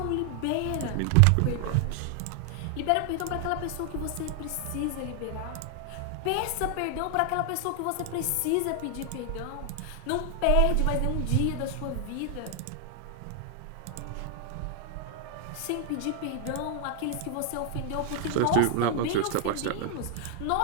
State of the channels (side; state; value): both; different; correlation 0.00